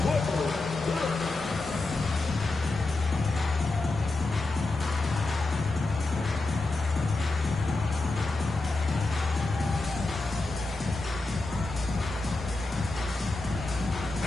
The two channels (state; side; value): quieter; right; 3.1 dB